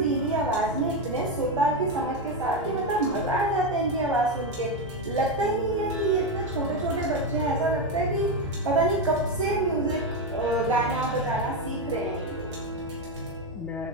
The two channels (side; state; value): both; normal; correlation 0.10